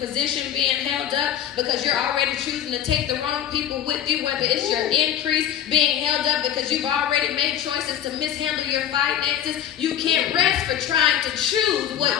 being held up because you're already choosing to take the wrong people with you, whether it's your increase being held up because you've already made choices to mishandle your finances, you can't rest for trying to choose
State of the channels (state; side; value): quieter; right; 10.4 dB